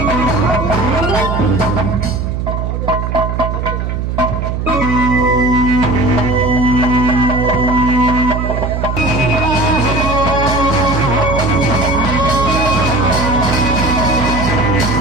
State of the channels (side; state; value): right; noise; hum, 3 dB below the sound